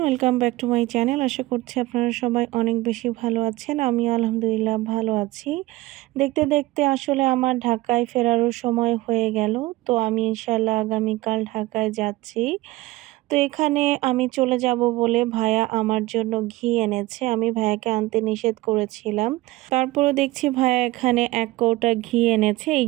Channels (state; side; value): quieter; left; 18.9 dB